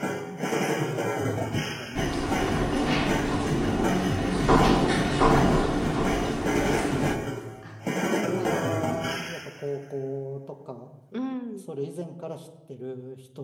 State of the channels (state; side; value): identical; both; correlation 1.00